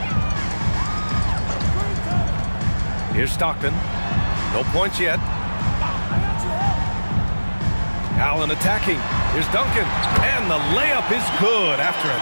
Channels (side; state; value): both; inverted; correlation -1.00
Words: Here's Stockton. No points yet. Allen attacking. Here's Duncan. And the layup is good after a